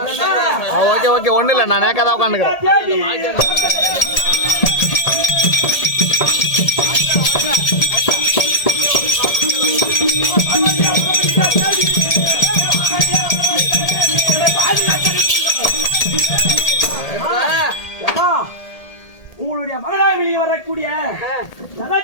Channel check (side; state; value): right; late; 1.8 ms